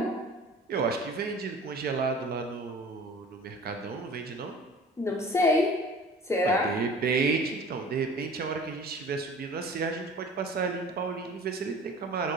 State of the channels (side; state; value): both; normal; correlation 0.43